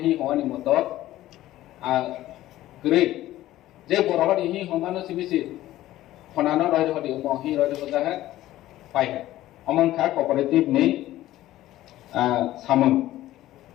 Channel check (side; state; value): right; quieter; 14.9 dB